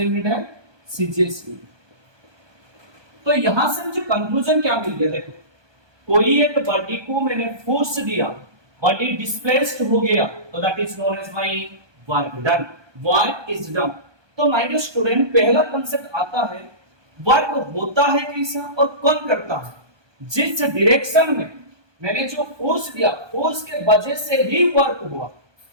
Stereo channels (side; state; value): left; late; 1.2 ms